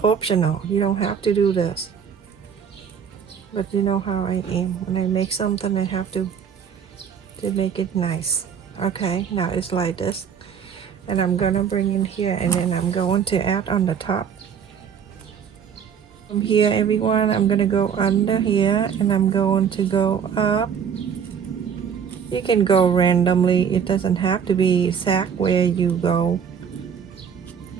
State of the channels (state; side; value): quieter; left; 7.5 dB